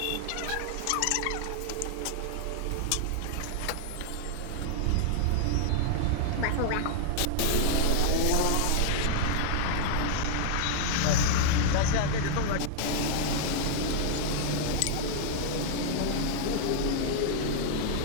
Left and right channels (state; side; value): different; both; correlation -0.01